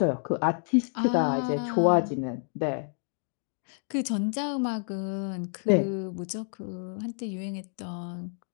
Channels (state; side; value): silent; right; 59 dB below the other